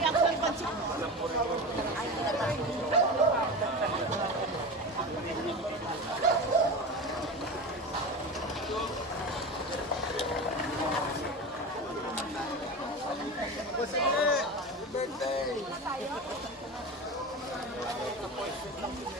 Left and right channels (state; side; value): normal; both; correlation 0.26